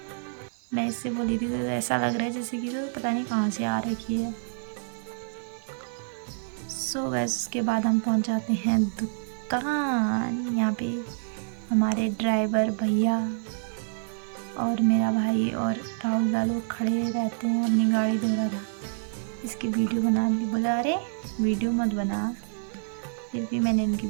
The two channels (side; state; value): left; silent; 60 dB below the other